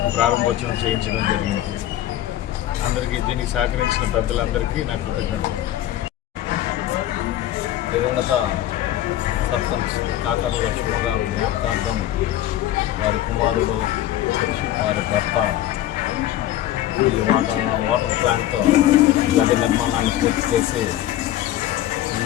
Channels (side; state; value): right; quieter; 13.2 dB